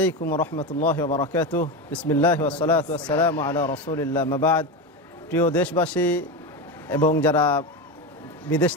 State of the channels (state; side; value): normal; both; correlation 0.18